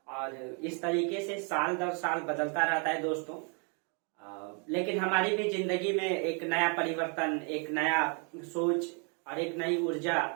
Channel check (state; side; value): quieter; left; 37.6 dB